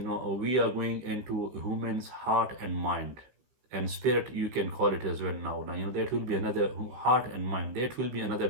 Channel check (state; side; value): late; left; 16 ms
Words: are going into humans' heart and mind and spirit, you can call it as well. Now that will be another heart and mind, that will be another